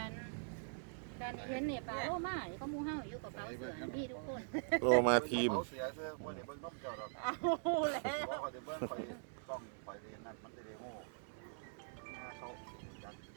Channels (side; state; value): left; silent; digital silence